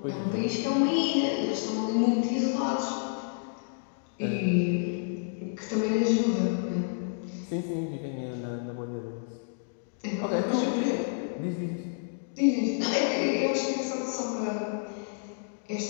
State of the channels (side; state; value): right; silent; digital silence